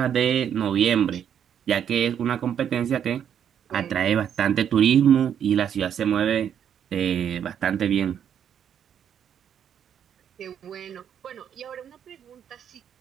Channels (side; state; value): left; quieter; 8.8 dB